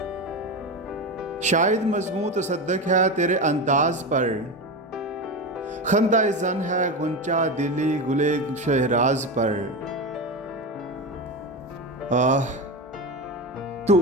शायद मज़मू तसद्दुक़ है तेरे अंदाज़ पर, खंदा ज़न है गुंचा दिली गुले शहराज पर। तू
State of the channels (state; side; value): normal; both; correlation 0.19